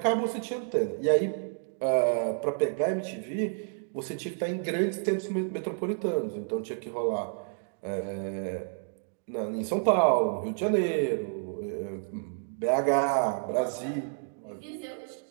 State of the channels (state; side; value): silent; left; 58 dB below the other